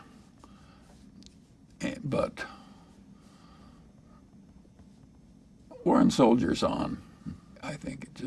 But Warren soldiers on. I think it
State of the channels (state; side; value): identical; both; correlation 1.00